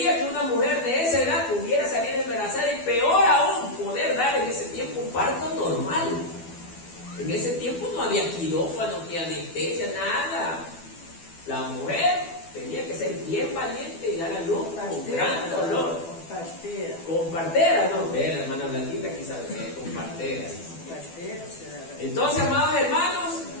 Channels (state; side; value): late; right; 12 ms